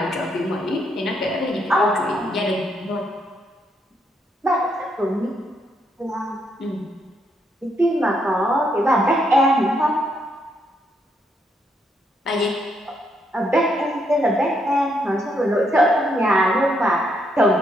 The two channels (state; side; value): normal; both; correlation 0.75